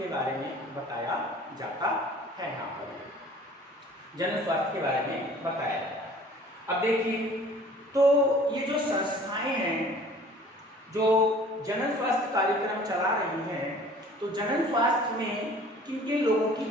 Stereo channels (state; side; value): normal; both; correlation 0.49